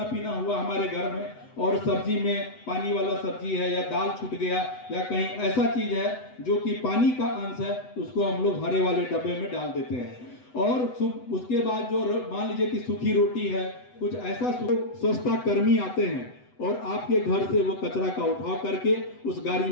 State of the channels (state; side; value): late; right; 8.0 ms